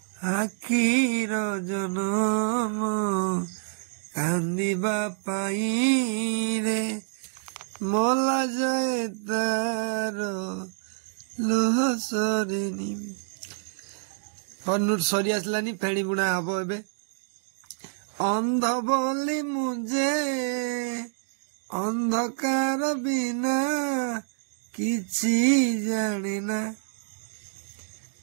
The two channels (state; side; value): silent; left; digital silence